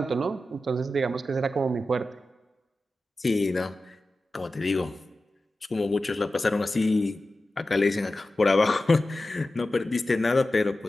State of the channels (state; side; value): normal; both; correlation 0.94